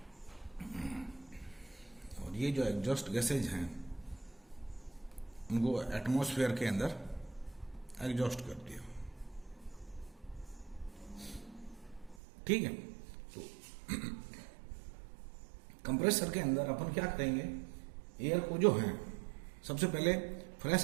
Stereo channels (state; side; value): drops out; left; at 12.2 s